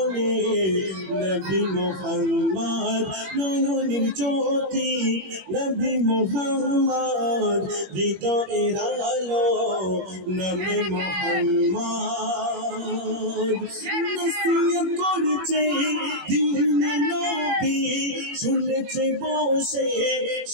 নবী মুহাম্মদ। নয়নের জ্যোতি নবী মুহাম্মদ, হৃদয়ের আলো নবী মুহাম্মদ। নসিহত করেছে দিনে নবী, শুনেছে বসে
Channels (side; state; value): left; late; 21 ms